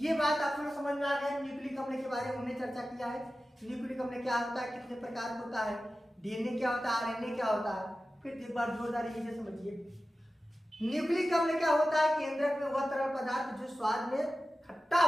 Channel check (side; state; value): both; normal; correlation 0.94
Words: बात आप लोग समझ में आ गया। न्यूक्लिक अम्ल के बारे में हमने चर्चा किया है। न्यूक्लिक अम्ल क्या होता है, कितने प्रकार होता है, डीएनए क्या होता है, आरएनए क्या होता है। फिर एक बार जोरदार ये समझिए, न्यूक्लिक अम्ल क्या होता है? केंद्रक में वह तरल पदार्थ जो स्वाद में खट्टा